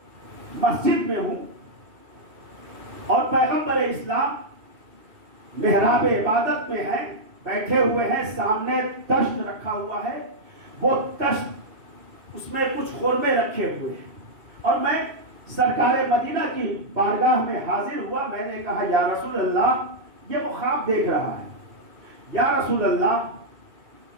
مسجد میں ہوں اور پیغمبر اسلام محراب عبادت میں ہیں، بیٹھے ہوئے ہیں، سامنے تشت رکھا ہوا ہے، وہ تشت اس میں کچھ خورمے رکھے ہوئے ہیں، اور میں سرکار مدینہ کی بارگاہ میں حاضر ہوا. میں نے کہا یا رسول اللہ، یہ وہ خواب دیکھ رہا ہے، یا رسول اللہ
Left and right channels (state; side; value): late; left; 2.7 ms